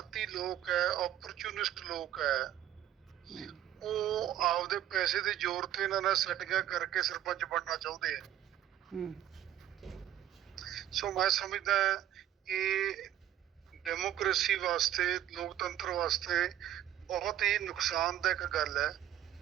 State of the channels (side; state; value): left; quieter; 11.9 dB